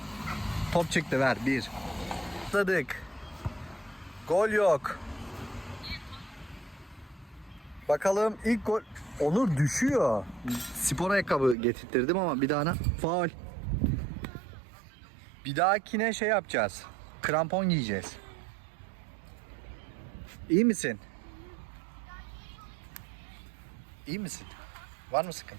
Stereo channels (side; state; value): left; drops out; at 11.6 s